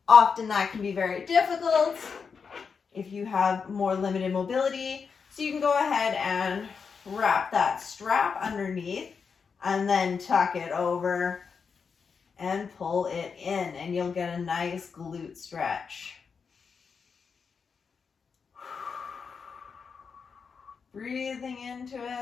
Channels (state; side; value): quieter; right; 5.8 dB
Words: Often that can be very difficult if you have more limited mobility. So you can go ahead and wrap that strap underneath and then tuck it over and pull it in, and you'll get a nice glute stretch. Breathing into